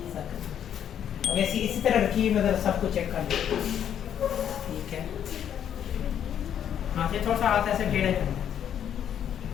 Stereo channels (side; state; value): right; quieter; 9.4 dB